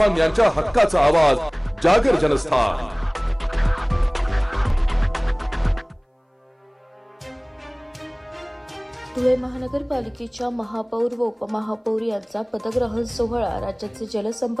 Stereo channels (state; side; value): identical; both; correlation 1.00